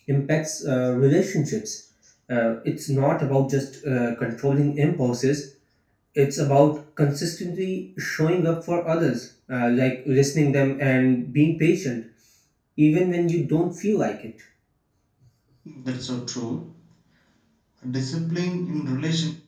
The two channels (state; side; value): identical; both; correlation 1.00